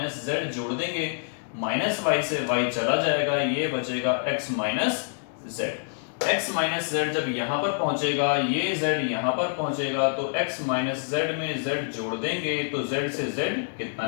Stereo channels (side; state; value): right; silent; digital silence